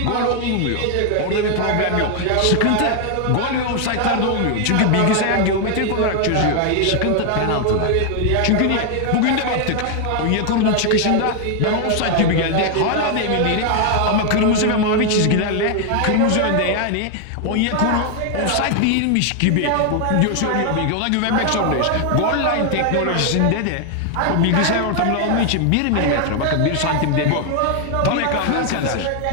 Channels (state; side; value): different; both; correlation 0.00